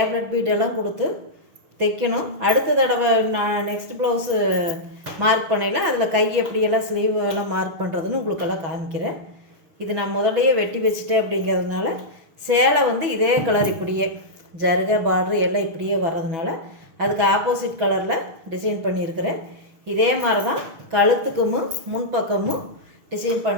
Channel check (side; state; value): left; late; 6.1 ms